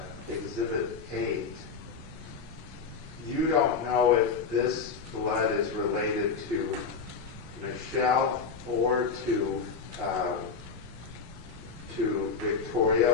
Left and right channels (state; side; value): quieter; right; 5.4 dB